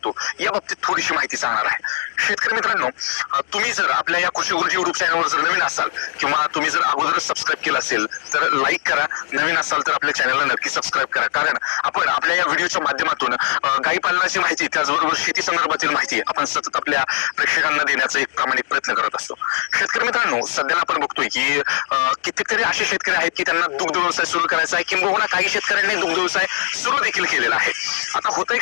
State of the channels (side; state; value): right; silent; digital silence